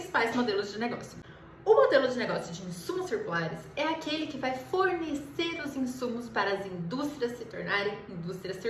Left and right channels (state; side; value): identical; both; correlation 1.00